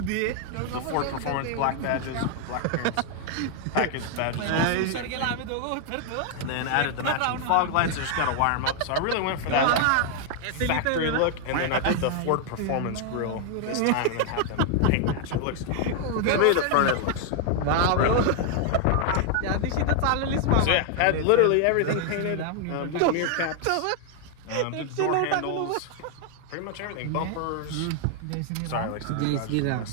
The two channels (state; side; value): different; both; correlation 0.00